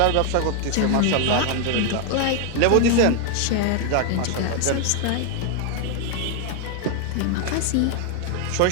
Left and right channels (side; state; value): both; different; correlation 0.00